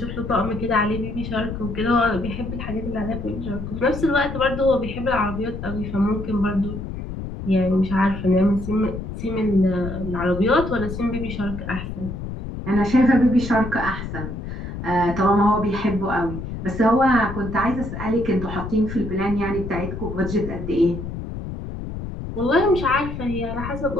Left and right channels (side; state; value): left; noise; rumble, 7 dB below the sound